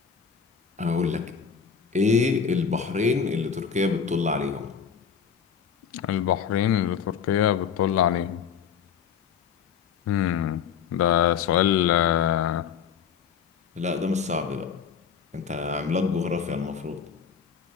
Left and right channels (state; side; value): quieter; right; 7.1 dB